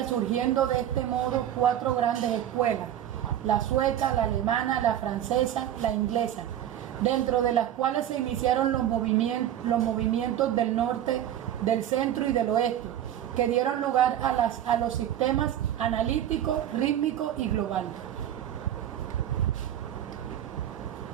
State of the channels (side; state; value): left; quieter; 11.2 dB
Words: surgiendo de este modo 4 grandes escuelas: la sueca, la alemana, la francesa, la inglesa, dentro de las cuales se iniciaron los movimientos del norte, del centro y del oeste, que dieron lugar a los sistemas analítico, rítmico y global.